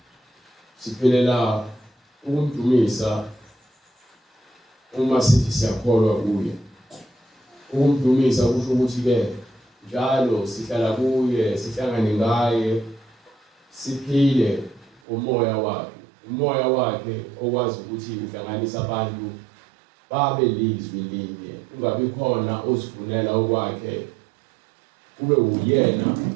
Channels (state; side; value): drops out; left; at 15.0 s